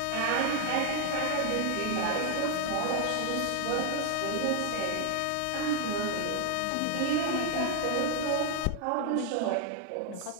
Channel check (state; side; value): different; both; correlation 0.00